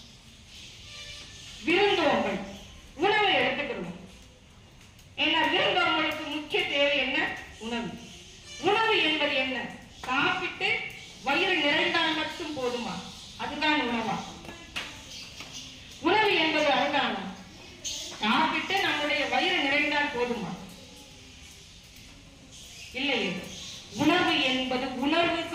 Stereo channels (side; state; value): both; identical; correlation 1.00